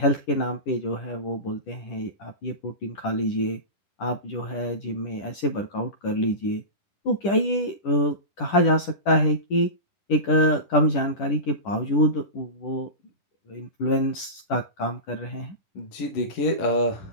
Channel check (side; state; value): right; late; 10 ms